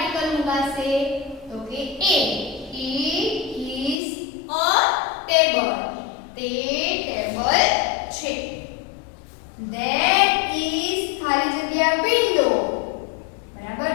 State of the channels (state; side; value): drops out; right; at 4.0 s